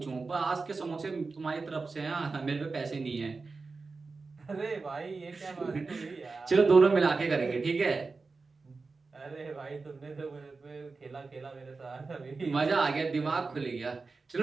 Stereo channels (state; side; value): quieter; left; 4.1 dB